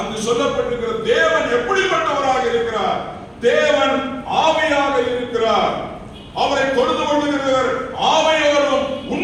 சொல்லப்பட்டிருக்கிற தேவன் எப்படிப்பட்டவராக இருக்கிறார்? தேவன் ஆவியாக இருக்கிறார். அவரை தொழுது கொள்ளுகிறவர் ஆவியோடும்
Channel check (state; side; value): identical; both; correlation 1.00